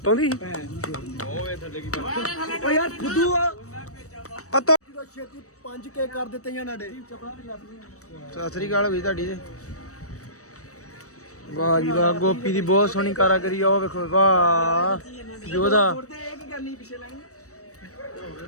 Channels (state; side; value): late; right; 0.65 ms